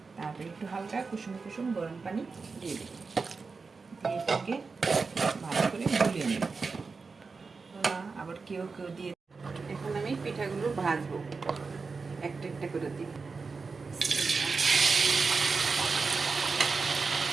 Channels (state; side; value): quieter; left; 4.5 dB